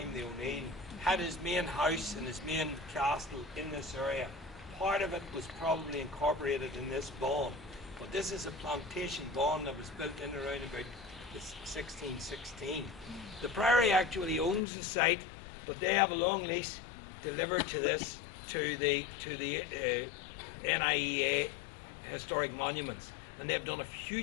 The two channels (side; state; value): right; drops out; at 14.6 s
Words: the O'Neill had his main house and his main castle in this area. Part of it was probably incorporated in this bawn, but this is a plantation bawn that was built in around about 1616. The Priory actually owns the site, but they have a long lease delivered to this to the NIEA Historic Monuments, and they've done a